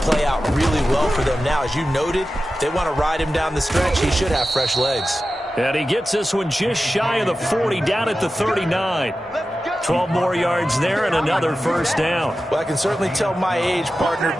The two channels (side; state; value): both; normal; correlation 0.93